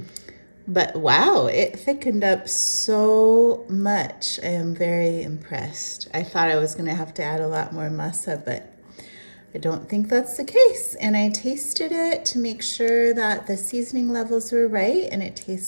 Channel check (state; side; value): inverted; both; correlation -1.00